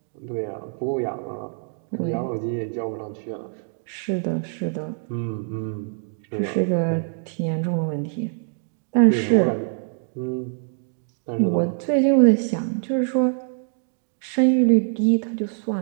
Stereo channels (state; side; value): silent; left; 61 dB below the other